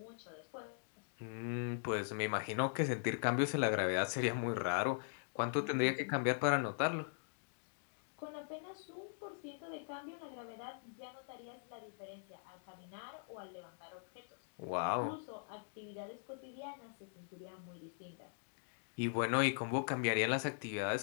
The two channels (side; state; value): right; silent; digital silence